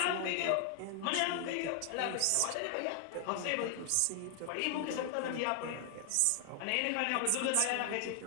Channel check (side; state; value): both; different; correlation 0.00